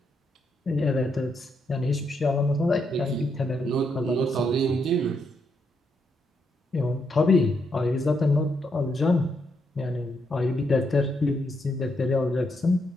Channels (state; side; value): normal; both; correlation 0.78